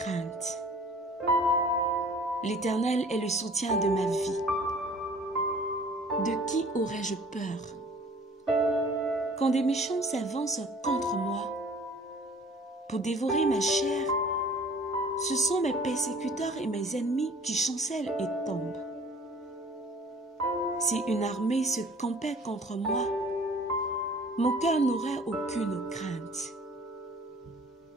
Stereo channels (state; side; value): normal; both; correlation 0.51